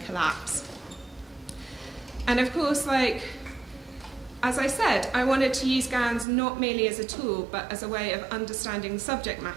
collapse. And of course, like, as I said, I wanted to use GANs not merely as a tool, but as a way of understanding the subject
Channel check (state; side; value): drops out; left; at 6.2 s